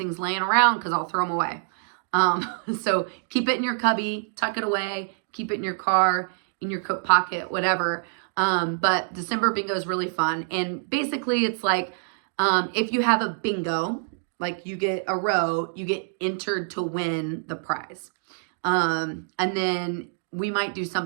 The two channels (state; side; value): silent; left; digital silence